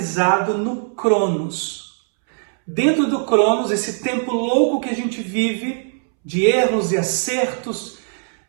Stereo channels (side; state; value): left; silent; 66 dB below the other